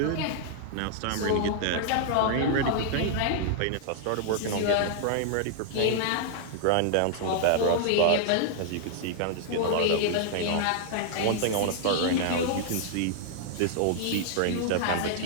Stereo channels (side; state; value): both; different; correlation -0.01